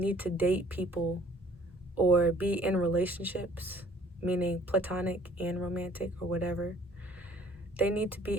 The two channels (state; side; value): normal; both; correlation 0.56